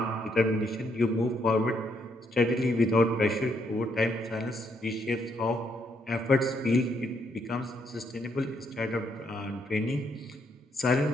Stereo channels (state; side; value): normal; both; correlation 0.74